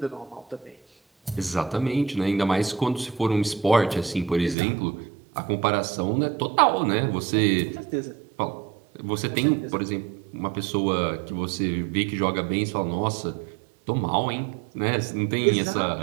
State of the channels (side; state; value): left; drops out; at 4.5 s